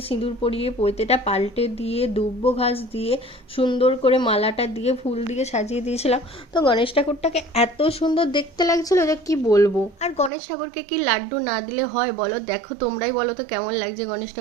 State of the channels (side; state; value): left; drops out; at 10.3 s